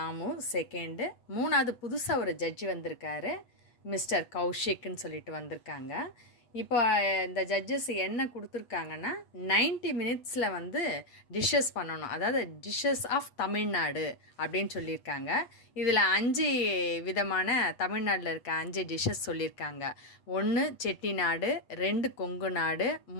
செகண்டு, மூணாவது புதுசாக ஒரு ஜட்ஜி வந்திருக்காரு, மிஸ்டர் கௌஷிக்னு சொல்லிட்டு வந்திருக்காங்க. இப்போ இந்த ஜட்ஜஸ் என்ன கொடுத்துருக்காங்கன்னா 90 மினிட்ஸில் வந்து டிஷ்ஷஸ் பண்ணணும், அதாவது டிஷ்ஷஸ் ஆஃப் தமிழ்நாடு அப்படின்னு சொல்லியிருக்காங்க. இதில் 5 விதமான தமிழ்நாட்டில் இருக்க 5 டிஷ்ஷஸ் சொல்லியிருக்காங்க. 1 செட்டிநாடு, 2 கொங்கு நாடு,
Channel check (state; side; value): late; right; 8.2 ms